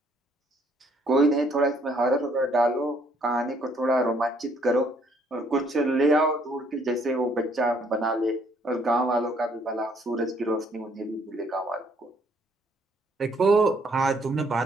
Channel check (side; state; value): both; normal; correlation 0.65